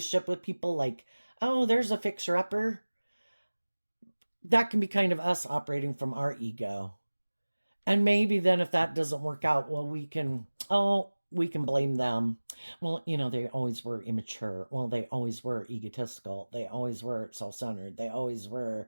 with people, like, oh, there's a fixer-upper. That can be kind of us operating from our ego. And maybe then if that doesn't work out, well, we can blame them. Well, they always were immature. Well, they always were egotistical. They always were self-centered. They always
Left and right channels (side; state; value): both; inverted; correlation -1.00